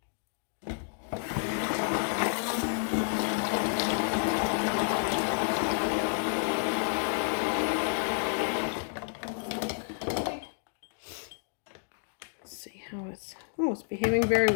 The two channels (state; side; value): silent; right; 58 dB below the other